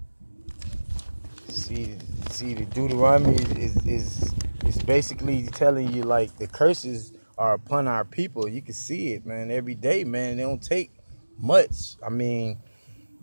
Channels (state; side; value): inverted; both; correlation -1.00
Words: See, the Deuteronomy is basically telling you, like, the curses are upon our people. You can see it, man, every day, man. They don't take much. I mean,